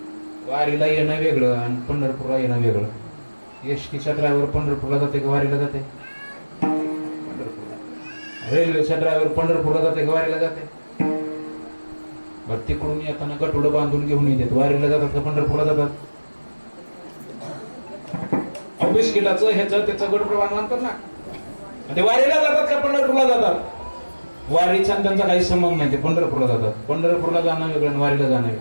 वारीला येणं वेगळं आणि पंढरपूरला येणं वेगळं. एसटीचा ड्रायव्हर पंढरपूरला जाते का वारीला जाते? रेल्वेचा ड्रायव्हर पंढरपूरला जाते का वारीला जाते? बरं, तिकडून येताना गटोडं बांधून घेऊन येतात, वारीला जातात का पंढरपूरला जातात? बिस्किटाचं ह्याचं त्याचं गटोडं बांधतात ना, ते वारीला जातात का पंढरपूरला जातात? वारीचा त्यांचा काही संबंध नाही, ते पंढरपूरला जातात. पंढरपूरला जाणं वेगळं आणि वारीला जाणं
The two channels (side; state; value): both; inverted; correlation -1.00